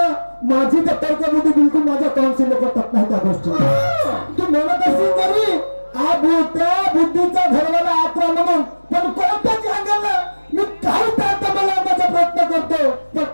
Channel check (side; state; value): both; inverted; correlation -1.00